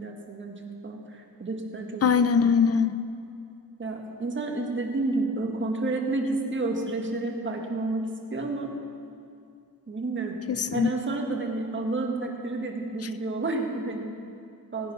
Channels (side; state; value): both; normal; correlation 0.41